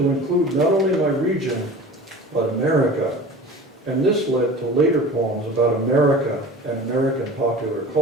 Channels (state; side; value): normal; both; correlation 0.38